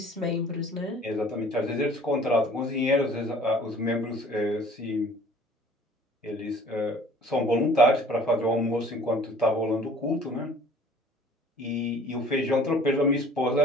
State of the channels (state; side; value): normal; both; correlation 0.51